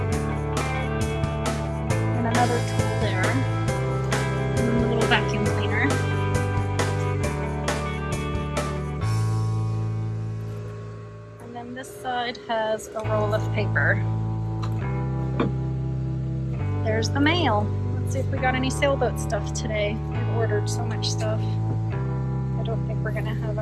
And another tool there. And then a little vacuum cleaner. And then this side has a roll of paper. There's the mail. Let's see if we got any sailboat stuff today. We've ordered so much stuff. I don't think we're gonna have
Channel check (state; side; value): identical; both; correlation 1.00